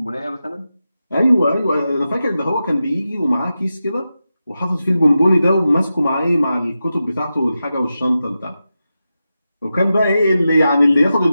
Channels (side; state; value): both; inverted; correlation -0.91